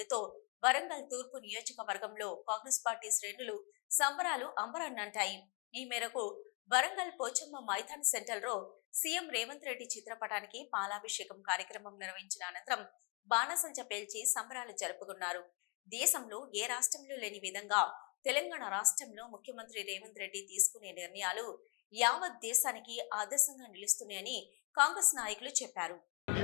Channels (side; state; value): right; quieter; 33.4 dB